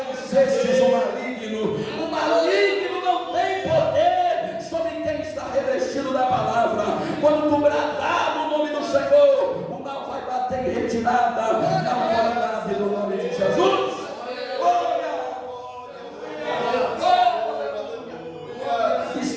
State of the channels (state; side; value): identical; both; correlation 1.00